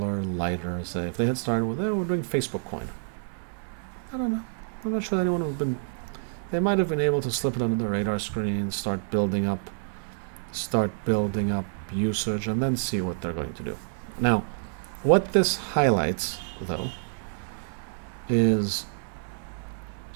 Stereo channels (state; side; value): silent; left; digital silence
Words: lighter, say if they had started with, we're doing Facebook coin. I don't know. I'm not sure that anyone would have been. They might have been able to slip it under the radar screen, start building up usage, and then see what they're going to do. Now, what this highlights, though, is